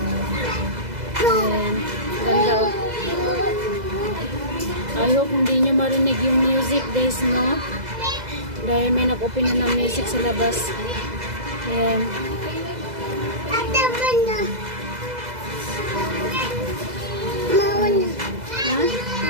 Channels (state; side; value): late; left; 2.0 ms